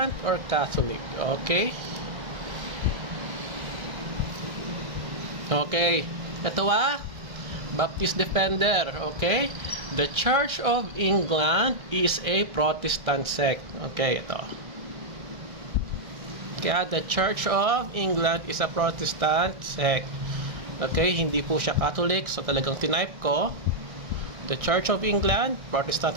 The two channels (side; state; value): left; late; 1.6 ms